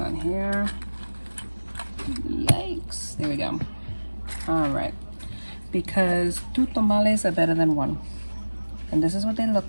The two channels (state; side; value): inverted; both; correlation -1.00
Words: here. Yikes, there we go. All right, because two tamales are better than one. And this is what they